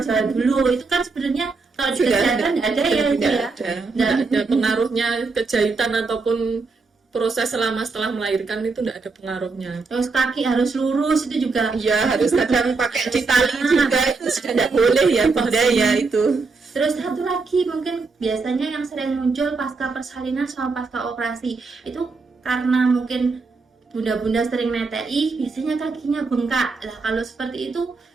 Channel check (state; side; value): quieter; left; 4.2 dB